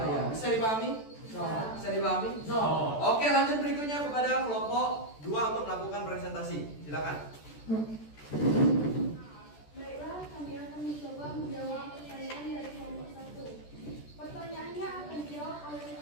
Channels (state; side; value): late; right; 14 ms